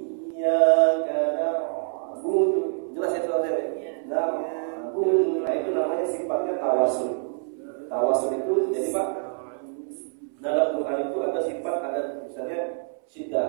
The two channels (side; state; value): left; silent; 61 dB below the other